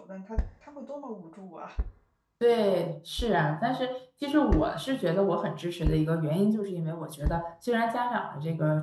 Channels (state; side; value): identical; both; correlation 1.00